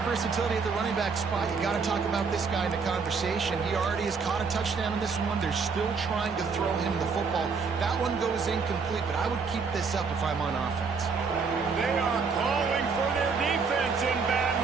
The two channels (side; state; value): left; quieter; 5.1 dB